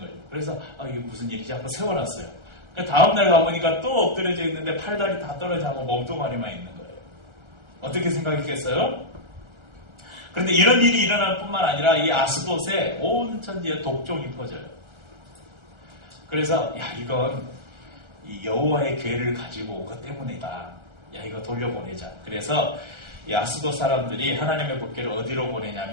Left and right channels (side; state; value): left; late; 1.3 ms